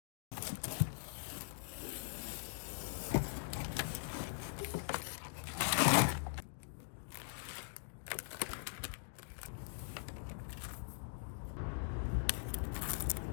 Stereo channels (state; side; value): silent; right; digital silence